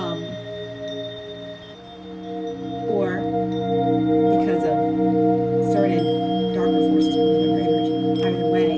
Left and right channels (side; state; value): both; identical; correlation 1.00